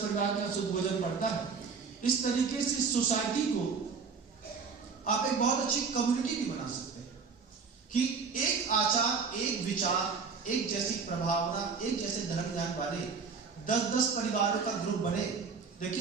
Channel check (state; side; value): quieter; left; 5.3 dB